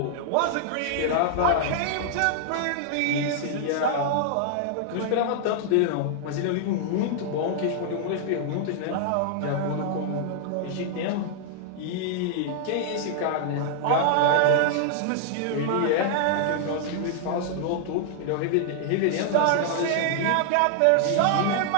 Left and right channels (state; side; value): different; both; correlation -0.01